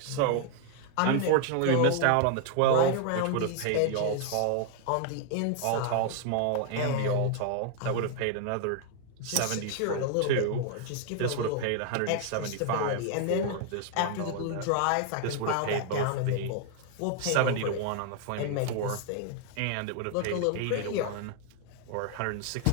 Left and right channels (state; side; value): different; both; correlation 0.00